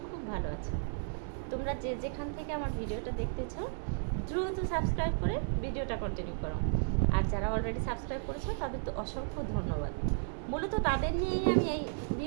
খুব ভালো আছো। তোমরা যে যেখান থেকে আমার ভিডিওটা দেখতেছো দ্রুত সাবস্ক্রাইব করে ভিডিওটা কন্টিনিউ করো। আর যারা অলরেডি সাবস্ক্রাইব করেছো তাদের তো অসংখ্য ধন্যবাদ। মূলত তাদের নিয়েই আমি এই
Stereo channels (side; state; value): left; silent; digital silence